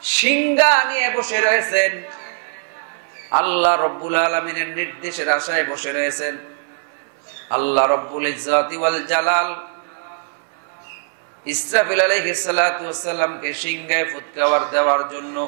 সিংহা নিয়ে বসে রয়েছেন, আল্লাহ রব্বুল আলামিনের নির্দেশের আশায় বসে রয়েছেন। আল্লাহ রব্বুল ইজ্জতি ওয়াল জালাল ইসরাফিল আলাইহিস সালাতু ওয়াস সালামকে সিংহায় ফুৎকার দেওয়ার জন্য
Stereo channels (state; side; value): silent; left; digital silence